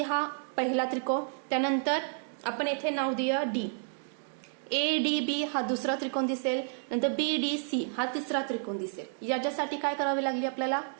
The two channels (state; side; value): silent; left; digital silence